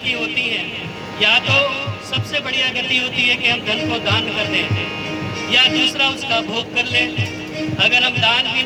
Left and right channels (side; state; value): both; identical; correlation 1.00